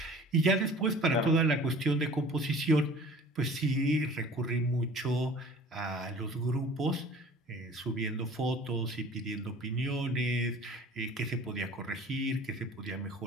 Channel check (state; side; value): normal; both; correlation 0.46